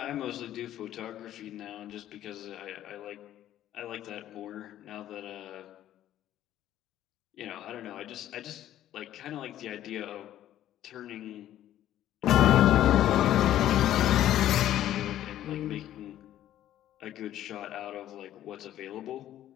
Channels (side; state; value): right; quieter; 12.4 dB